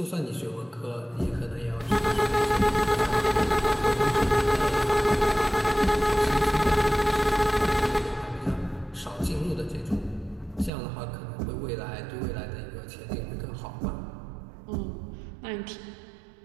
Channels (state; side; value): drops out; left; at 10.7 s